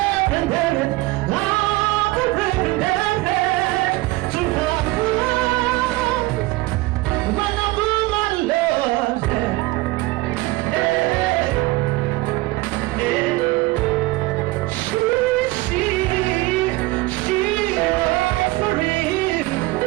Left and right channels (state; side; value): quieter; left; 20.4 dB